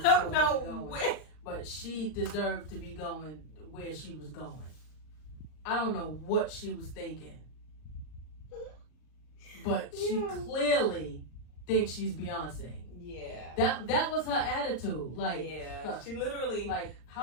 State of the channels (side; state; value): right; late; 39 ms